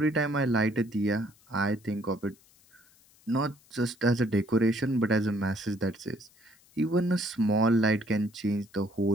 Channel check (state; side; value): noise; left; hiss, 29 dB below the sound